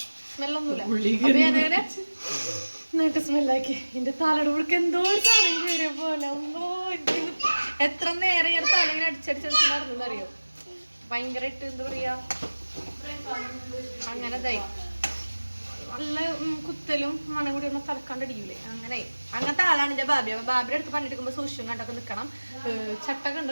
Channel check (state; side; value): inverted; both; correlation -1.00